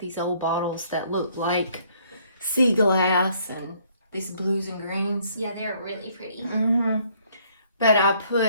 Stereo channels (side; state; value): both; inverted; correlation -0.64